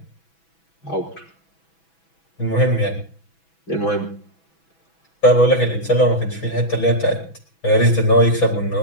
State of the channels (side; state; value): right; late; 6.1 ms